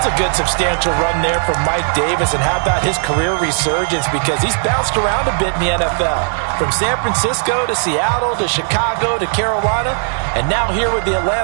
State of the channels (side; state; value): left; silent; 62 dB below the other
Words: a good substantial run there from Mike Davis. And how about his career resurgence? Because he's bounced around a bit in the NFL. From San Francisco to Seattle to Chicago to Carolina. And now here with the